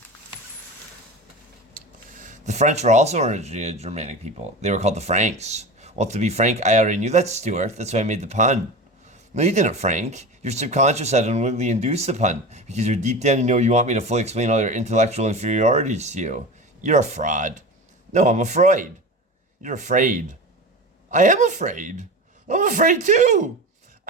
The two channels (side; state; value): both; normal; correlation 0.29